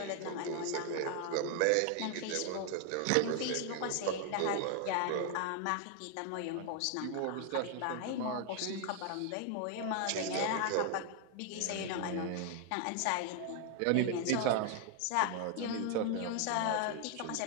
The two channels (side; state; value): both; different; correlation 0.00